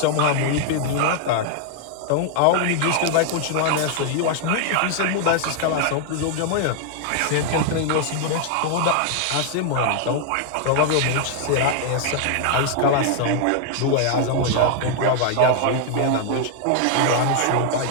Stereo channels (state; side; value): different; both; correlation 0.00